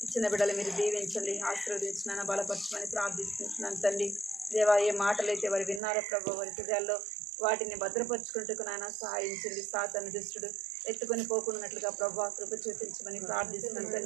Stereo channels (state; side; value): drops out; left; at 5.8 s